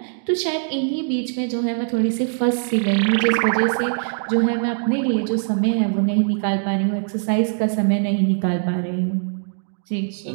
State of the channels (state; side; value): silent; left; 62 dB below the other